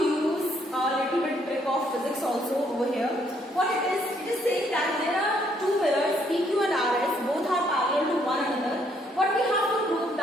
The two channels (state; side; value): normal; both; correlation 0.69